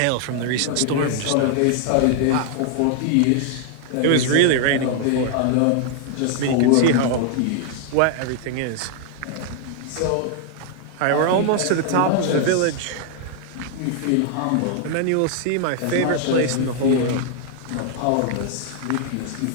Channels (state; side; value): different; both; correlation 0.00